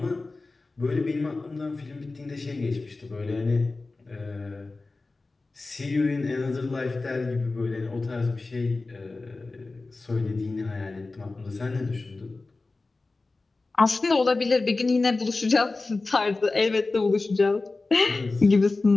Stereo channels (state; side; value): quieter; right; 3.5 dB